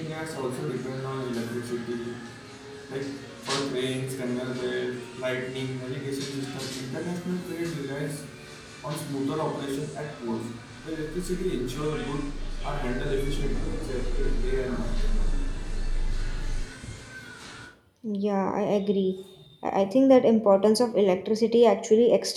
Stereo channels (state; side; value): identical; both; correlation 1.00